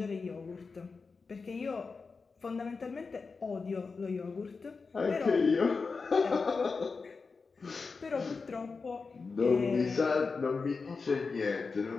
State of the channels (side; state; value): right; quieter; 4.6 dB